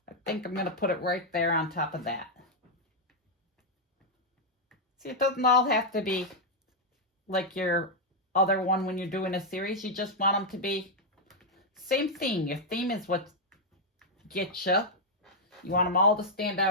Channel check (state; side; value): normal; both; correlation -0.02